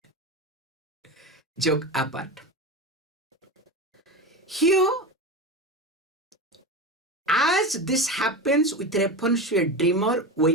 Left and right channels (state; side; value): normal; both; correlation 0.23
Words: Joke apart. Here, as this happens with reference to a dreamer